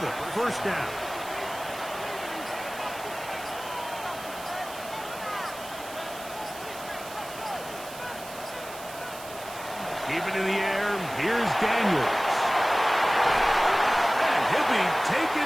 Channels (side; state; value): right; noise; hiss, 15 dB below the sound